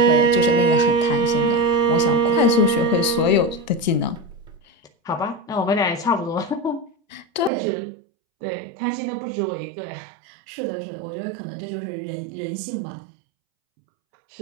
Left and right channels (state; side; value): drops out; left; at 7.5 s